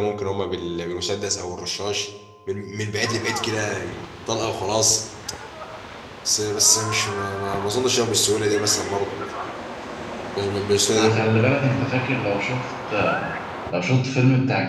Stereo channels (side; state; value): both; identical; correlation 1.00